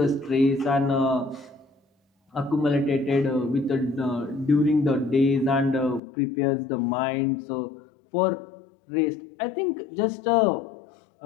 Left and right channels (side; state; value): right; drops out; at 6.0 s